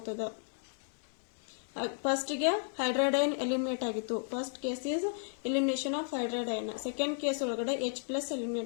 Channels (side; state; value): right; silent; digital silence